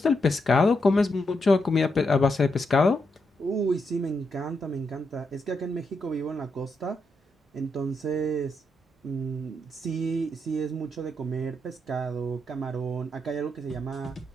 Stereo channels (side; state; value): both; normal; correlation 0.82